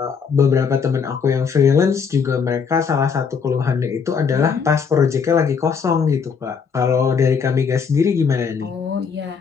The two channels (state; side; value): quieter; right; 6.1 dB